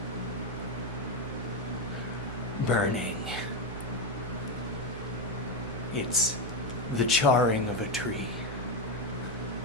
Burning. It's the charring of a tree.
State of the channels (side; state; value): both; normal; correlation 0.09